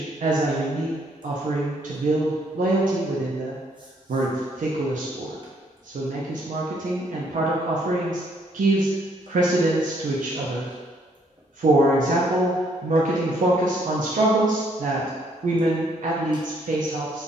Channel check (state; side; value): normal; both; correlation 0.68